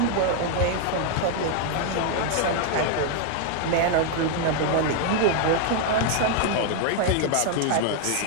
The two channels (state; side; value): different; both; correlation 0.00